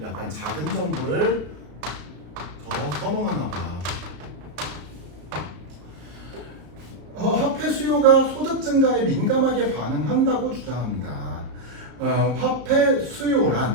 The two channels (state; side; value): late; left; 33 ms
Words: 약간 작은 정부를 더 선호하나 봐. 화폐 수요가 소득 증가에 민감하게 반응한다고 주장합니다. 화폐